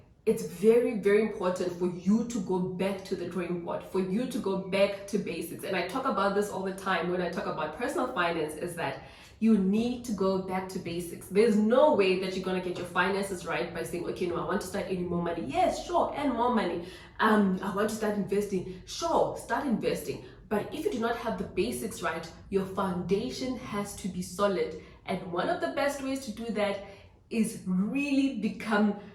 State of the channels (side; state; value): both; identical; correlation 1.00